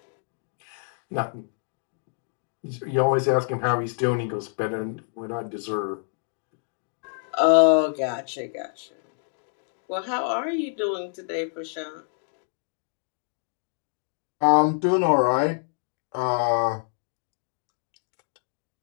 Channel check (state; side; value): silent; right; 60 dB below the other